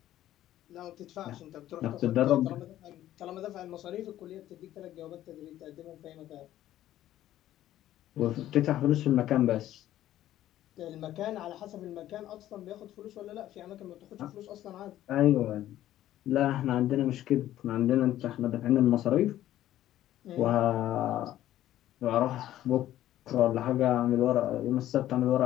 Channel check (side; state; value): right; quieter; 13.3 dB